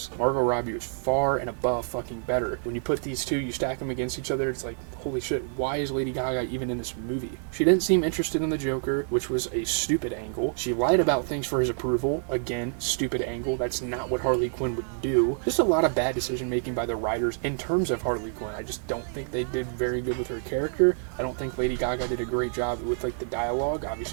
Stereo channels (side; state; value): left; silent; 60 dB below the other